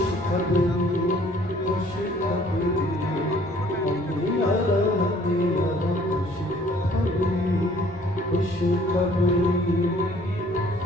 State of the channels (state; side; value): noise; left; rumble, 25 dB below the sound